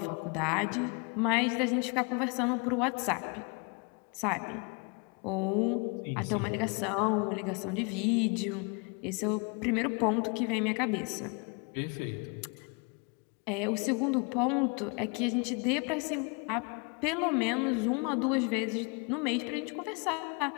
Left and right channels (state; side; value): quieter; right; 32.7 dB